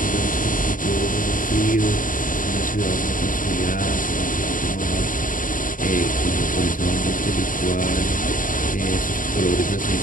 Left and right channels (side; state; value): right; late; 0.39 ms